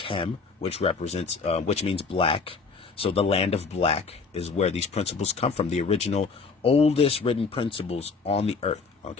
which represents, which means black. So the land of black is where these principles come from. The original, oldest written principles on the earth,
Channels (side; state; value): right; quieter; 4.7 dB